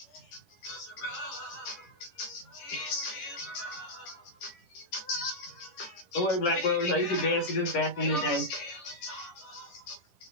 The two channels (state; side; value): late; right; 10 ms